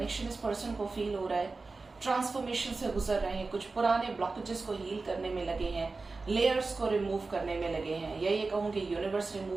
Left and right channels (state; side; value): quieter; left; 3.8 dB